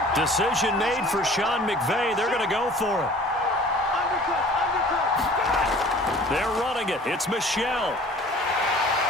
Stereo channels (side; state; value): both; normal; correlation 0.48